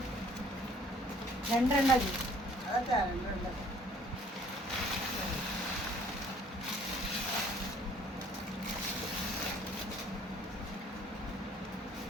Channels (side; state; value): both; normal; correlation 0.57